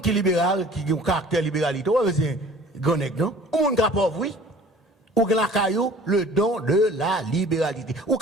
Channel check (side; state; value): both; normal; correlation 0.48